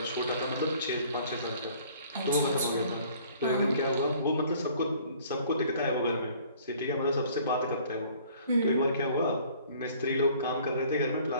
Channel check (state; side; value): inverted; both; correlation -0.55